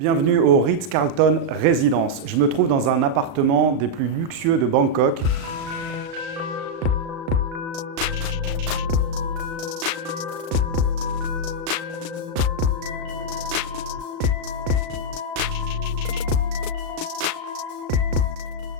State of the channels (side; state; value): left; late; 36 ms